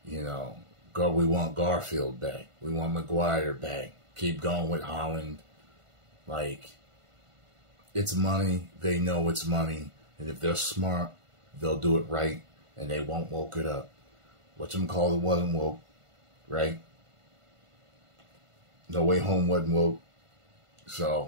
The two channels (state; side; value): late; left; 1.5 ms